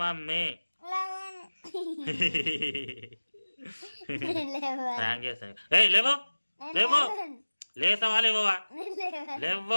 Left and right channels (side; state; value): both; inverted; correlation -1.00